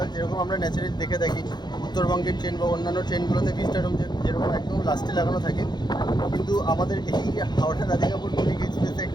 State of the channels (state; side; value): late; right; 0.21 ms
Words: যেরকম আমরা ন্যাচারালি দেখে থাকি উত্তরবঙ্গের ট্রেন বা অন্যান্য ট্রেনগুলোতে ভিস্টা ডোম যেরকম একদম লাস্টে লাগানো থাকে, কিন্তু আমাদের এই হাওড়া রাধিকাপুর কুলিক এক্সপ্রেসে